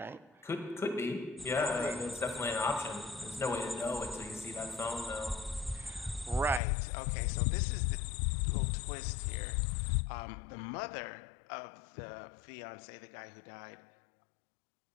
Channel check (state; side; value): drops out; right; at 6.6 s